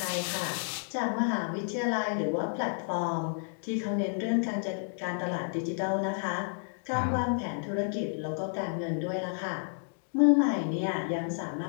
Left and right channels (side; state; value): right; silent; digital silence